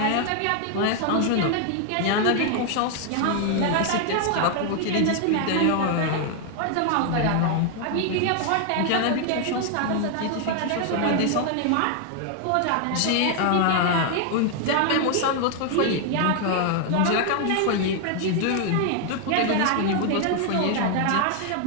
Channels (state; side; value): different; both; correlation 0.00